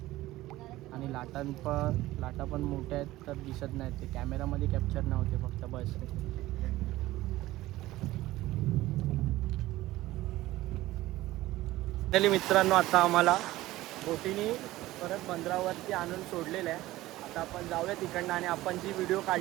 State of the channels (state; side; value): quieter; left; 16.9 dB